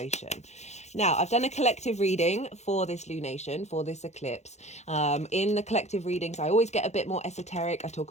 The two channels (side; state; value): right; late; 0.33 ms